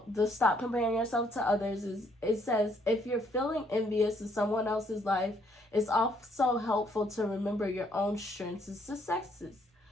the stop comparing yourself to others is it says if you're feeling envious of someone else's life, it's also helpful to remember your own strengths and successes.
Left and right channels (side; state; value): both; normal; correlation 0.69